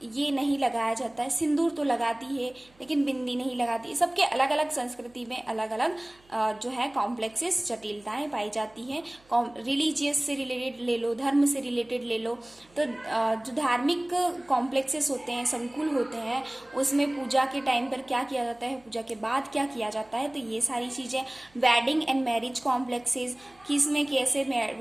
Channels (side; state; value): right; noise; hum, 30 dB below the sound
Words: ये नहीं लगाया जाता है। सिंदूर तो लगाती है लेकिन बिंदी नहीं लगाती। सबके अलग अलग संस्कृति में अलग अलग जो है कॉम्प्लेक्सेस, जटिलताएं पाई जाती हैं। रिलीजियस से रिलेटेड ले लो, धर्म से रिलेटेड ले लो, तो जो धार्मिक कॉम्प्लेक्सेस होते हैं, संकुल होते हैं, उसमें पूजा के टाइम पर क्या किया जाता है, पूजा के बाद क्या किया जाता है, तो ये सारी चीज़ें। वेडिंग एंड मैरिज कॉम्प्लेक्सेस, किसमें कैसे